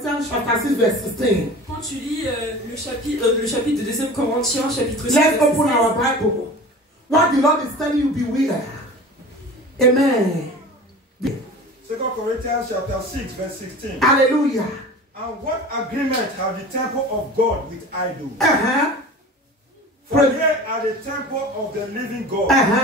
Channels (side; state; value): both; normal; correlation 0.37